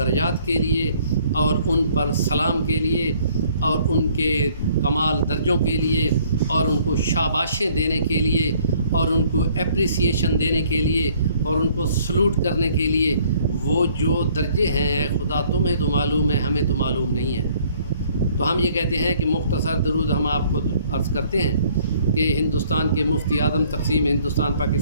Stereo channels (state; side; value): inverted; both; correlation -0.60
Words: کے لیے، اور ان پر سلام کے لیے، اور ان کے کمال درجوں کے لیے، اور ان کو شاباشیں دینے کے لیے، اور ان کو اپریسیشن دینے کے لیے، اور ان کو سلوٹ کرنے کے لیے، وہ جو درجے ہیں اے خدا تمہیں تو معلوم ہے، ہمیں تو معلوم نہیں ہے۔ تو ہم یہ کہتے ہیں کہ مختصر درود ہم آپ کو عرض کرتے ہیں کہ ہندوستان کے مفتی اعظم تقسیم ہندوستان